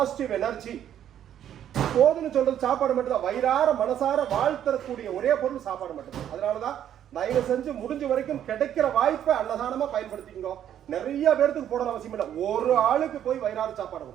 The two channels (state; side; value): quieter; left; 10.3 dB